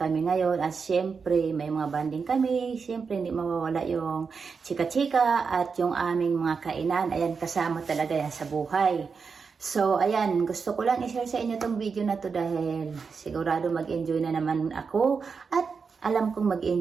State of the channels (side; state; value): left; quieter; 5.4 dB